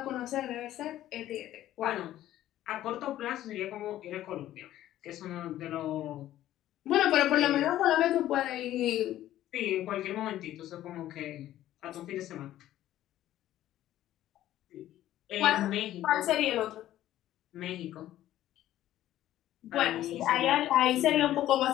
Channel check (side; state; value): right; quieter; 13.4 dB